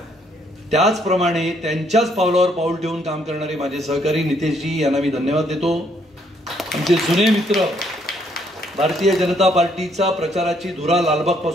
त्याचप्रमाणे त्यांच्याच पावलावर पाऊल ठेवून काम करणारे माझे सहकारी नितेशजी यांना मी धन्यवाद देतो. आमचे जुने मित्र, भारतीय जनता पार्टीचा प्रचाराची धुरा लालबाग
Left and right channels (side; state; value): both; normal; correlation 0.69